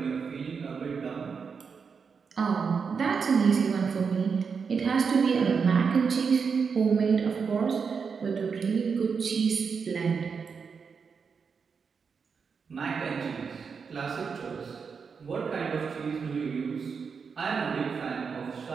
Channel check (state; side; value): quieter; left; 5.8 dB